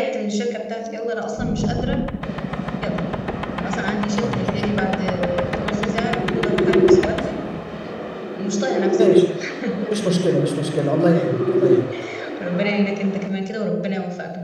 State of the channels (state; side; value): identical; both; correlation 1.00